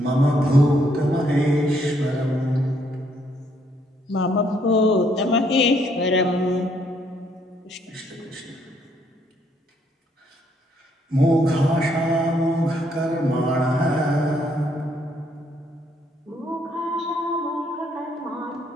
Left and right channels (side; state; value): both; normal; correlation 0.70